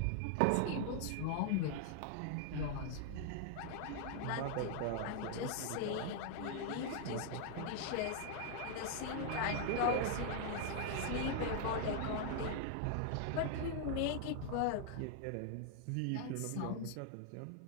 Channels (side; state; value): both; different; correlation 0.00